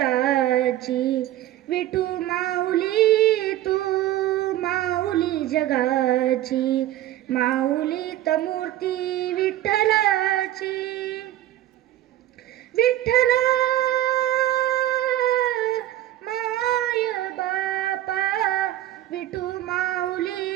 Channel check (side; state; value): left; quieter; 14.0 dB